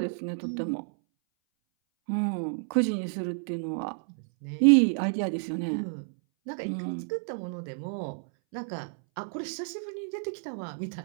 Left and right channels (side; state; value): left; silent; 58 dB below the other